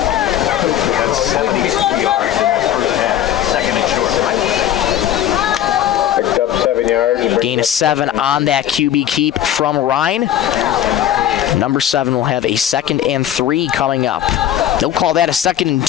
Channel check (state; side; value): quieter; right; 11.2 dB